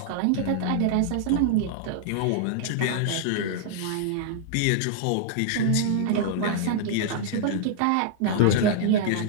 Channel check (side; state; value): both; different; correlation -0.01